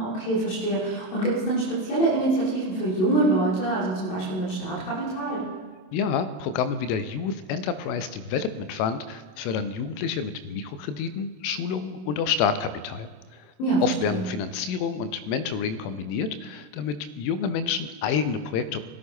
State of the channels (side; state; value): right; late; 27 ms